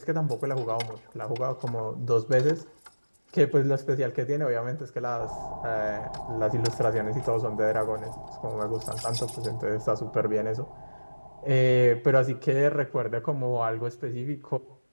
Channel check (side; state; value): both; inverted; correlation -1.00